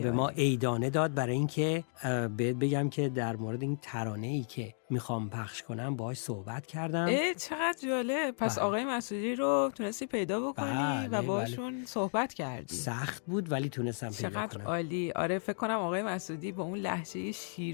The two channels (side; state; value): right; silent; digital silence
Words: ما عیدانه داد برای اینکه بهت بگم که در مورد این ترانه‌ای که میخوام پخش کنم باهاش صحبت کردم. چقدر جالب. پس آقای مسعودی رو تونستی پیدا بکنی و باشون صحبت کردی. سخت بود ولی تونستم پیدا کنم. چقدر عالی. آره فکر کنم آقای مسعودی با اون لهجه